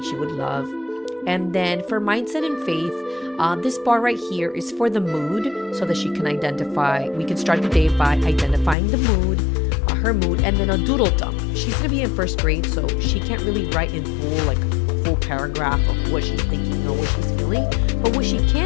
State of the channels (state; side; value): drops out; right; at 8.8 s